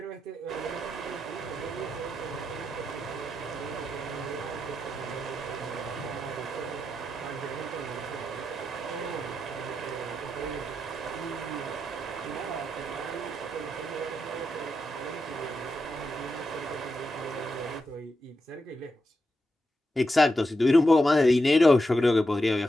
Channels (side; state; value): both; normal; correlation 0.86